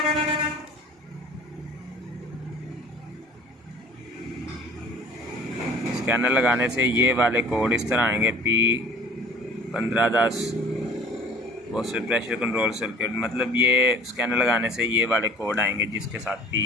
स्कैनर लगाने से ये वाले कोड इस तरह आएंगे, P1510 box pressure control circuit, मतलब ये स्कैनर लगाने से ये वाले कोड आएंगे जिसके साथ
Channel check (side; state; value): both; normal; correlation 0.47